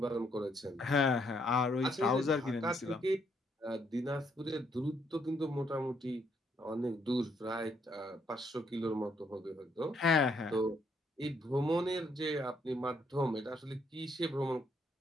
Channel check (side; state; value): both; normal; correlation 0.72